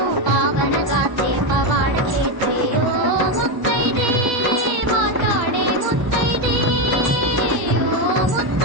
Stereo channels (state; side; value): late; left; 1.0 ms